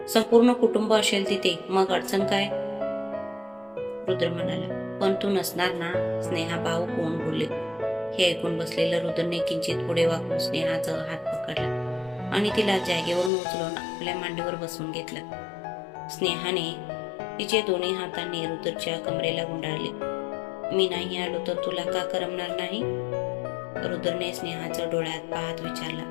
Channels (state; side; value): drops out; right; at 13.3 s